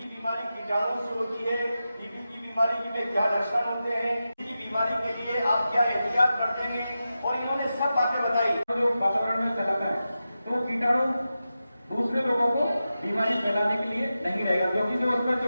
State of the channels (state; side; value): inverted; both; correlation -0.92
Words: बीमारी कीटाणु से होती है, टीबी की बीमारी में क्या लक्षण होते हैं, टीबी की बीमारी के लिए आप क्या एहतियात बरतेंगे, और इन्होंने सब बातें बताई। जो वातावरण में फैलाता है तो कीटाणु दूसरे लोगों को बीमारी फैलाने के लिए नहीं रहेगा, क्योंकि जो उसमें